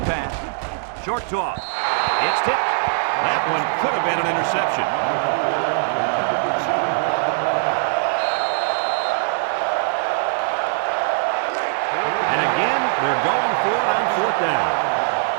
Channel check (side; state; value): left; silent; digital silence